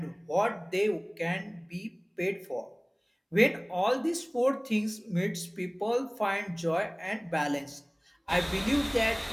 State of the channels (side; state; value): both; identical; correlation 1.00